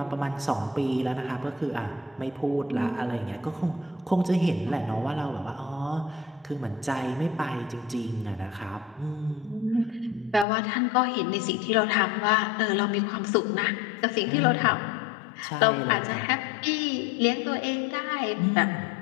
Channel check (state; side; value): drops out; right; at 10.5 s